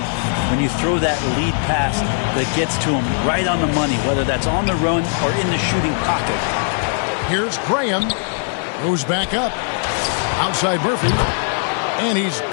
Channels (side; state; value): right; silent; digital silence